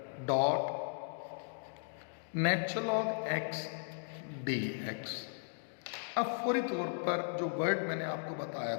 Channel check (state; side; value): silent; right; digital silence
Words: dot natural log x d x. अब फौरी तौर पर जो वर्ड मैंने आपको बताया